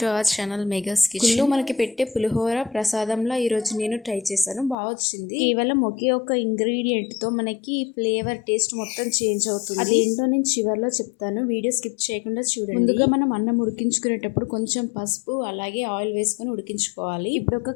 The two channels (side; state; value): right; drops out; at 4.8 s